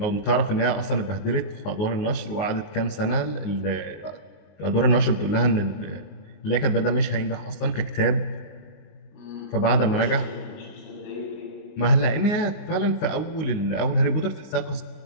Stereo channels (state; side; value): late; right; 19 ms